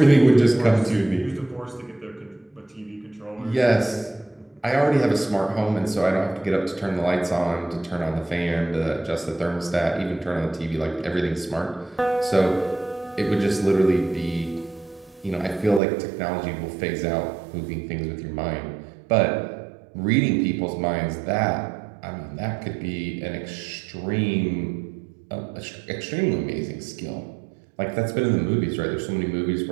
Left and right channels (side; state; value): left; drops out; at 15.8 s